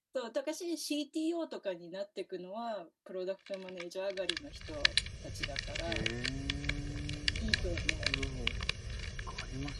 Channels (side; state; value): both; identical; correlation 1.00